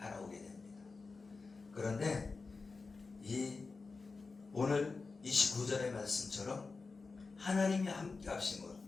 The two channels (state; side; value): quieter; right; 4.2 dB